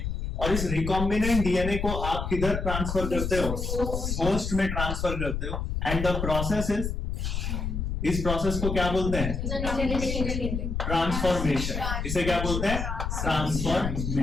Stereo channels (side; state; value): left; noise; rumble, 3 dB below the sound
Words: और इस रिकॉम्बिनेंट डीएनए को आप किधर ट्रांसफर करते हो? होस्ट में ट्रांसफर करते हो। एंड द प्रोसेस इज, इस प्रोसेस को क्या बोलते हैं? ट्रांसफॉर्मेशन। इसे क्या बोलते हैं?